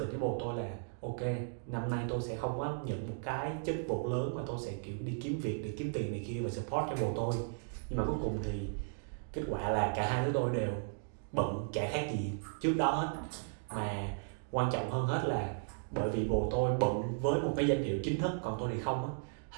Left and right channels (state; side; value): silent; left; digital silence